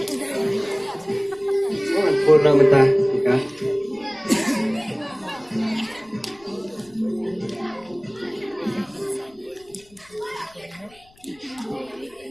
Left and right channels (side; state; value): left; noise; rumble, 29 dB below the sound